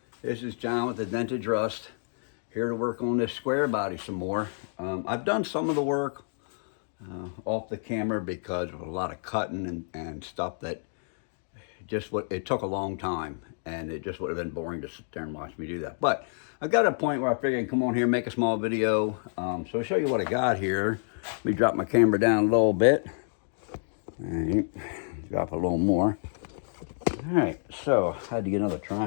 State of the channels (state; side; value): silent; right; digital silence